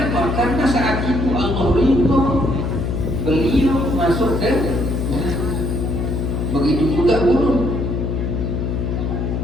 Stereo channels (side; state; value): left; noise; hum, 1 dB below the sound